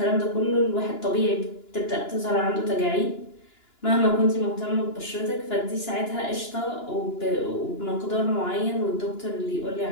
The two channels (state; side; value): late; right; 2.9 ms